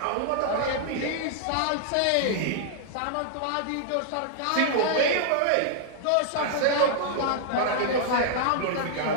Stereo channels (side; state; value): both; different; correlation -0.01